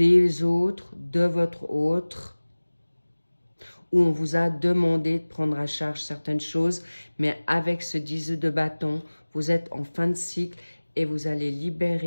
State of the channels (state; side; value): inverted; both; correlation -1.00